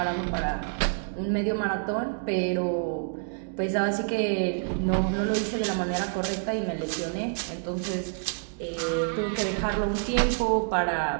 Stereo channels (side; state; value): left; silent; digital silence